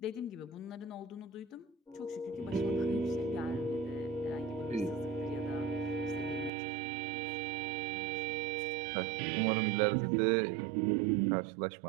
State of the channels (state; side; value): drops out; left; at 6.5 s